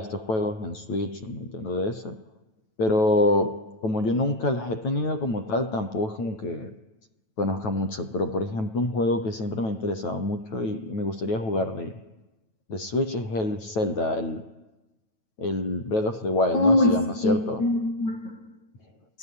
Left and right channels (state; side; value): late; right; 9.2 ms